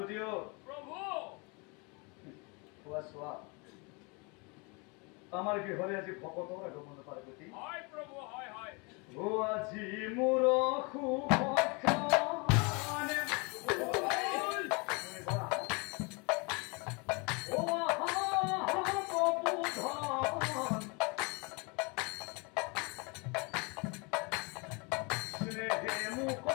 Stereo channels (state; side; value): quieter; right; 30.6 dB